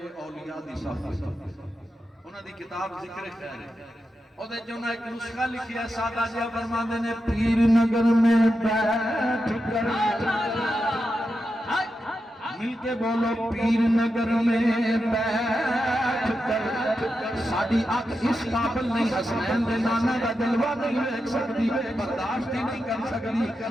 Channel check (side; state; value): both; normal; correlation 0.88